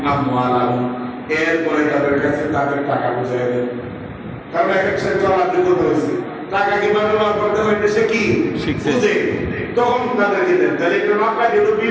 এরপরে তাদের কাছে তাদের টাকা বুঝাই দেন। কারণ এক এক সাথে চলার যোগ্যতা হয়েছে, টাকা কিভাবে ব্যবহার করতে হয় সে কি বুঝে, তখন তাদেরকে দেন। তাহলে একটা মাপটা যেহেতু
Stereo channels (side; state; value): both; identical; correlation 1.00